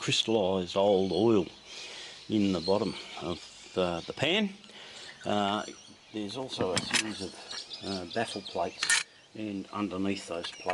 old oil in the bottom of the pan. There's also a series of baffle plates, and underneath those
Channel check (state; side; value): identical; both; correlation 1.00